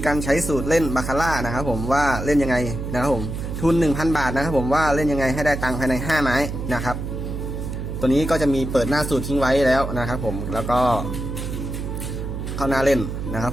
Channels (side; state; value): right; noise; hum, 5 dB below the sound